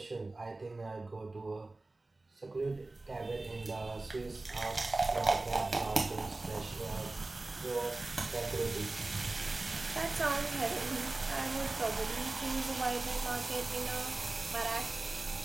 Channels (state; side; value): quieter; left; 3.1 dB